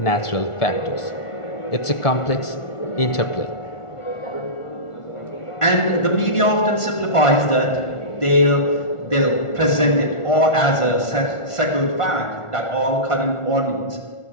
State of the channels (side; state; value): right; late; 1.4 ms